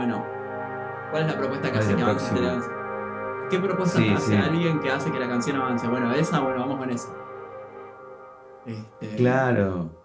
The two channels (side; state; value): both; identical; correlation 1.00